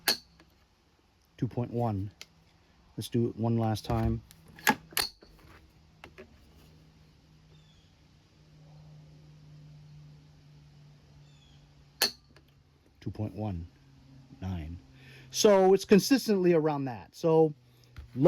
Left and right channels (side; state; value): both; identical; correlation 1.00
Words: 2.1. Let's do it one last time. .19. So it's consistently around that. So